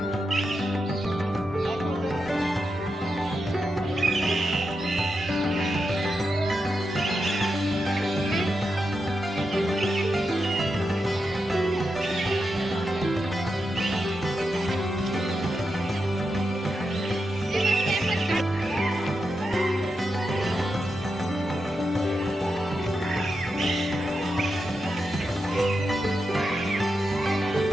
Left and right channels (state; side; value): normal; both; correlation 0.87